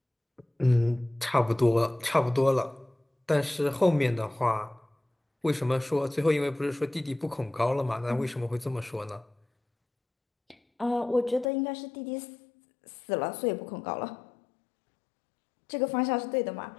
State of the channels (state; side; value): drops out; right; at 11.5 s